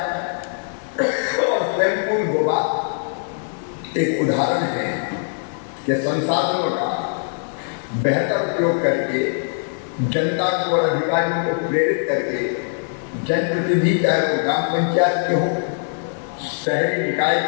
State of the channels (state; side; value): silent; right; 64 dB below the other